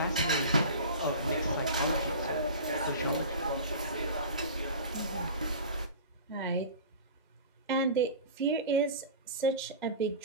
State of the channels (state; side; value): inverted; both; correlation -0.35